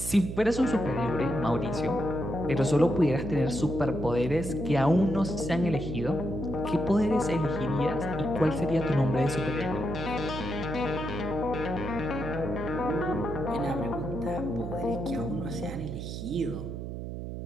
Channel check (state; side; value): noise; right; hum, 6 dB below the sound